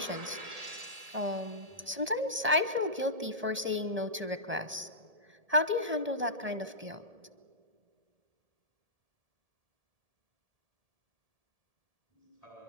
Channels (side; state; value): left; late; 1.7 ms